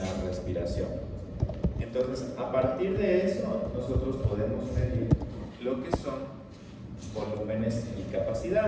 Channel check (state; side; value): identical; both; correlation 1.00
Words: respiración. Entonces, a partir de eso, nosotros podemos medir lo que son volúmenes y